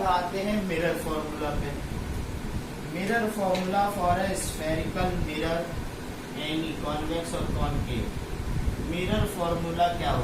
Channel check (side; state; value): both; identical; correlation 1.00